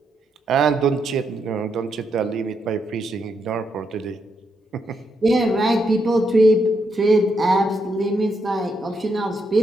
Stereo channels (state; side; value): normal; both; correlation 0.79